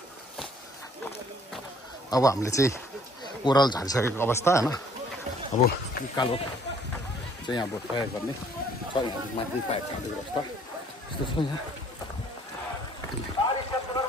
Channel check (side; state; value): both; normal; correlation 0.60